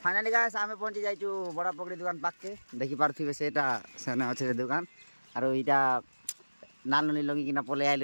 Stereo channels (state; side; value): inverted; both; correlation -1.00